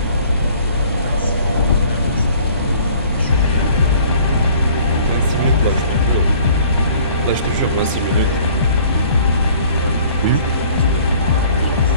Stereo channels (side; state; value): both; inverted; correlation -0.53